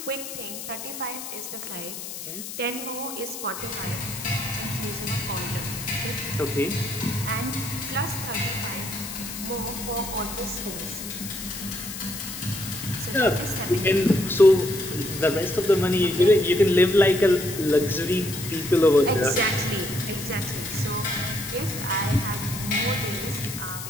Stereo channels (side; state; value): left; noise; hiss, 9 dB below the sound